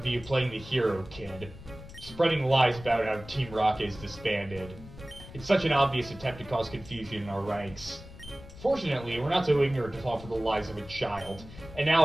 you playing the hero, kid. Spreading lies about how Team Rocket is disbanded. It's such an obvious attempt to cause confusion in our ranks. Fortunately, we're not so ignorant to fall for the lies of a child, and now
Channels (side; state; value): left; noise; rumble, 16 dB below the sound